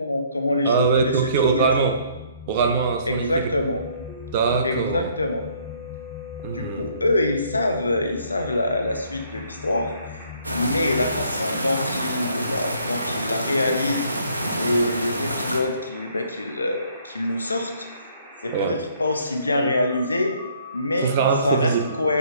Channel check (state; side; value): inverted; both; correlation -0.63